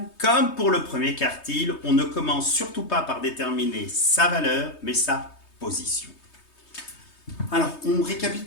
comme pour le premier quartile, on ne commence surtout pas par déterminer sa valeur, mais sa position. Alors, on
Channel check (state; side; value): late; right; 3.2 ms